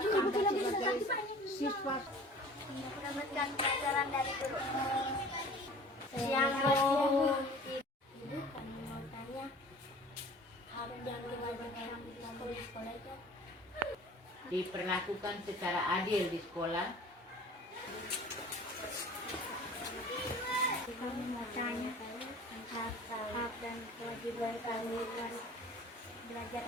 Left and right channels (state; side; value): normal; both; correlation 0.45